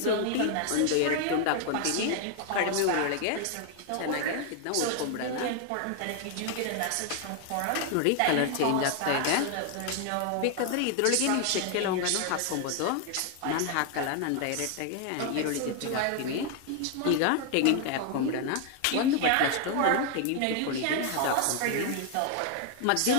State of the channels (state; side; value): different; both; correlation 0.00